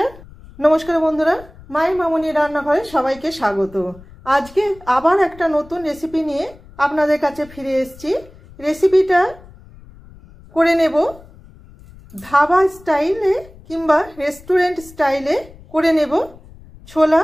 নমস্কার বন্ধুরা, মায়ের মামনি রান্নাঘরে সবাইকে স্বাগত। আজকে আবার একটা নতুন রেসিপি নিয়ে আপনাদের কাছে ফিরে এসেছি। রেসিপিটা করে নেব ধাবা স্টাইলে কিংবা রেস্টুরেন্ট স্টাইলে করে নেব ছোলা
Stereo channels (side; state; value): left; noise; rumble, 22 dB below the sound